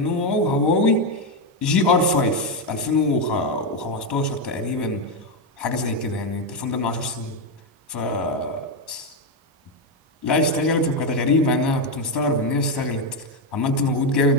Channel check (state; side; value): normal; both; correlation 0.06